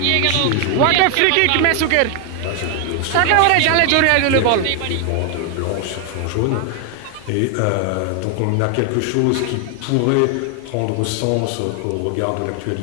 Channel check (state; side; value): different; both; correlation 0.01